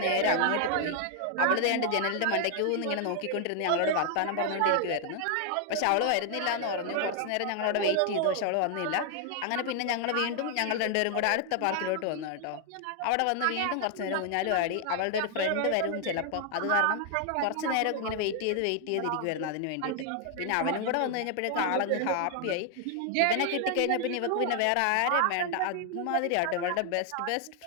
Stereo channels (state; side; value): different; both; correlation 0.00